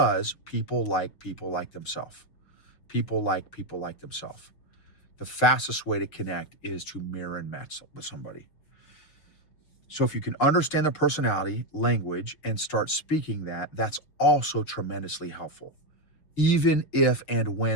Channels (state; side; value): late; right; 6.7 ms